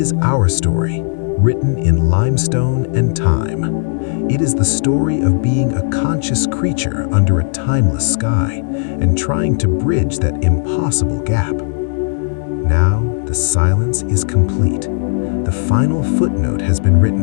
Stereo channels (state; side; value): silent; right; digital silence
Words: our story, written in limestone and time. It is the story of being a conscious creature under a timeless sky and trying to bridge that impossible gap. Now, the silence is complete. The final footnote has been